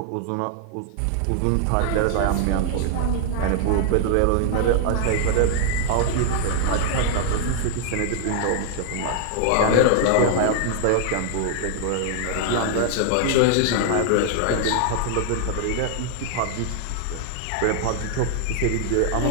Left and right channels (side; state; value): both; different; correlation 0.00